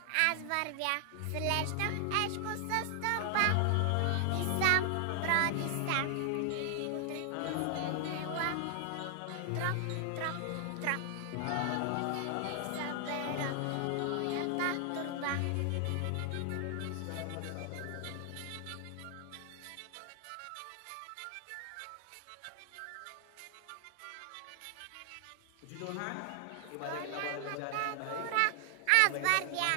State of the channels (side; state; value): both; different; correlation 0.00